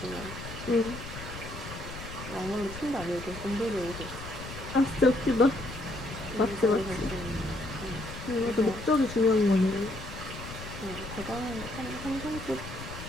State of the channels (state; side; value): noise; left; rumble, 11 dB below the sound